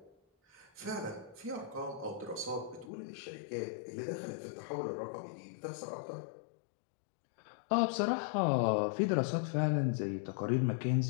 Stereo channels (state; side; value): drops out; right; at 2.9 s